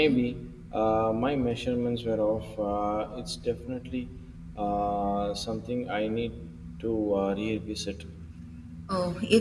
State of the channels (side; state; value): both; identical; correlation 1.00